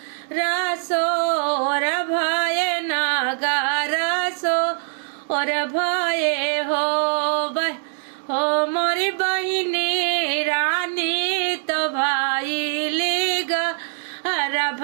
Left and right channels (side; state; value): left; silent; 64 dB below the other